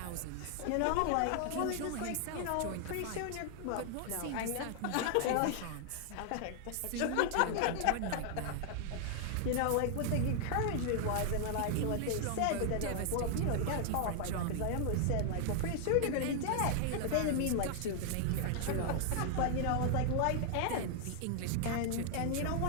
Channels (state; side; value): different; both; correlation 0.00